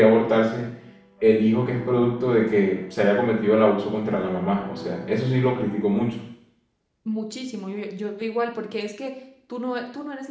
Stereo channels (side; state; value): both; identical; correlation 1.00